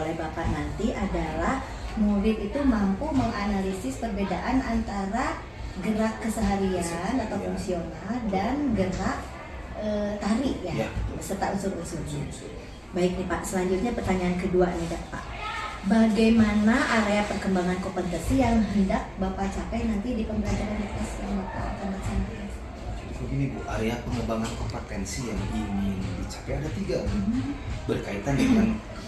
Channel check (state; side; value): identical; both; correlation 1.00